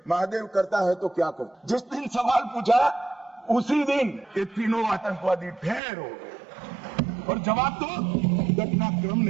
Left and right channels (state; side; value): drops out; left; at 5.8 s